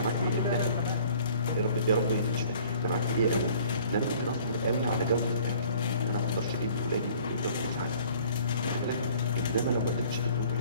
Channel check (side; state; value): both; inverted; correlation -0.52